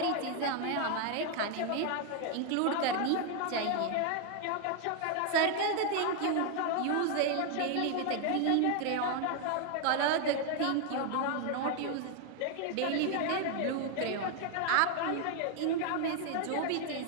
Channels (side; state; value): both; different; correlation 0.00